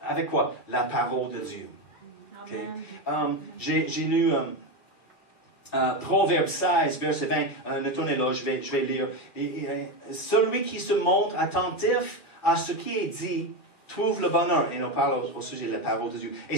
avec quoi? La parole de Dieu. Okay? J'ai lu Proverbe 16, verset 20. Ne tournez là, je vais lire. Celui qui se montre attentif à ce qui est dit trouve le bonheur. Et on parle au sujet de la parole de Dieu. Et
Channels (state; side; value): late; right; 2.3 ms